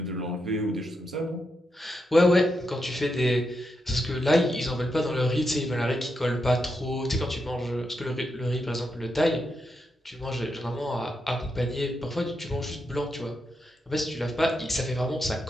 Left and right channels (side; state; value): both; normal; correlation 0.84